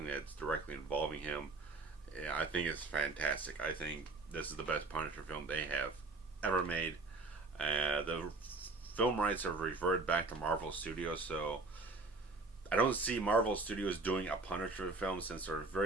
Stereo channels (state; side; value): quieter; left; 3.5 dB